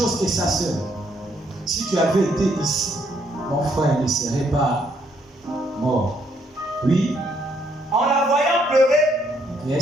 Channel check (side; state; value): both; normal; correlation 0.71